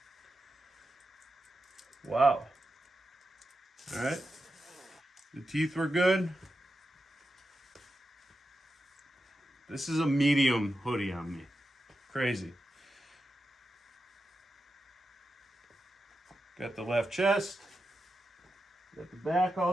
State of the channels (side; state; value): both; normal; correlation 0.89